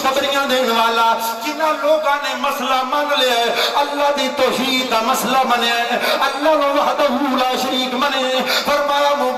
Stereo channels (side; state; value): both; identical; correlation 1.00